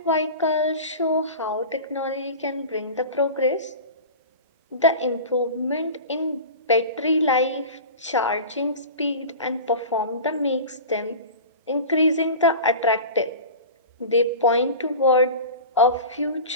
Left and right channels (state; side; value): inverted; both; correlation -0.33